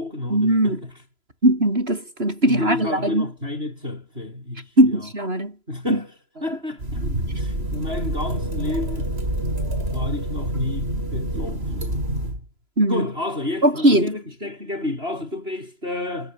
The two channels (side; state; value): left; late; 3.0 ms